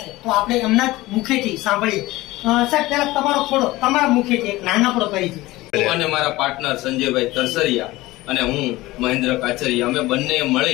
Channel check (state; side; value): quieter; right; 19.0 dB